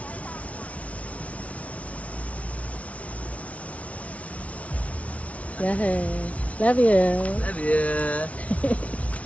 Yeah. Love you. Love you.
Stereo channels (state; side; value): late; right; 0.065 ms